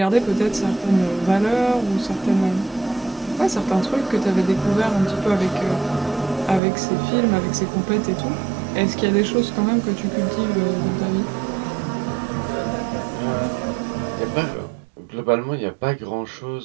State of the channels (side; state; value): left; drops out; at 6.6 s